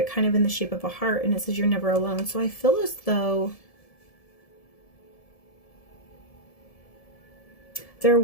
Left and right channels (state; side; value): late; right; 1.7 ms